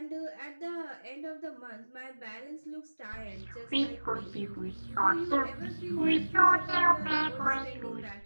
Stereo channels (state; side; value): inverted; both; correlation -1.00